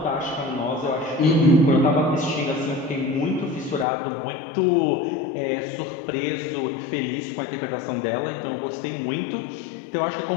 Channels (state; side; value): drops out; right; at 3.9 s